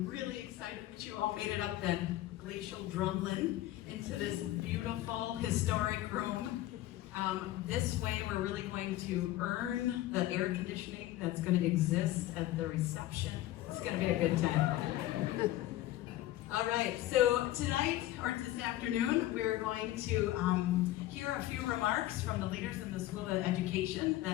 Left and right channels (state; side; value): quieter; right; 15.2 dB